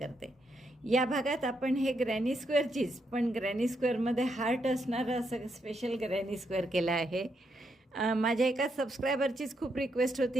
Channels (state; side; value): normal; both; correlation 0.79